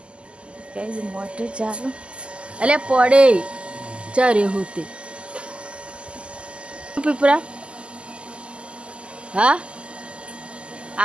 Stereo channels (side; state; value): left; late; 0.053 ms